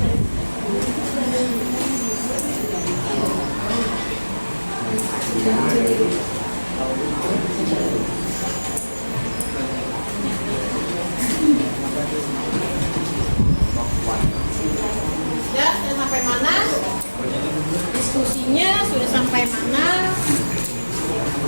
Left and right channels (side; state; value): both; inverted; correlation -1.00